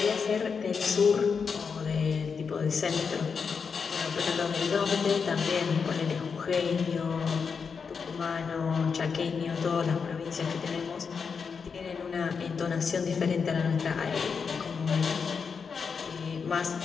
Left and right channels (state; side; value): quieter; right; 5.8 dB